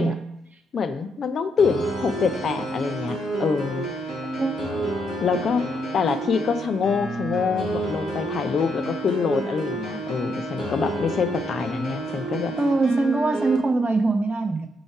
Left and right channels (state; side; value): normal; both; correlation 0.77